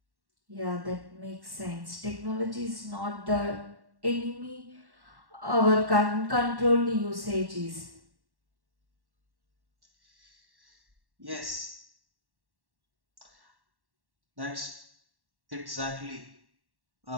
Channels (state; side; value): late; left; 1.1 ms